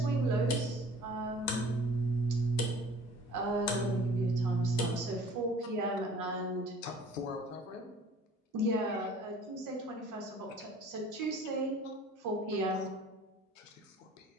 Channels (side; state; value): both; normal; correlation 0.49